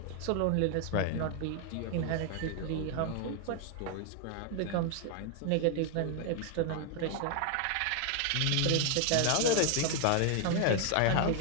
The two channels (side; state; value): both; different; correlation 0.00